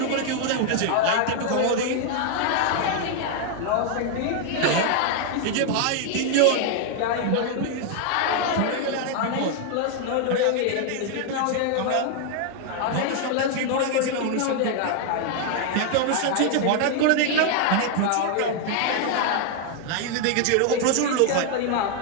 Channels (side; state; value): both; different; correlation 0.00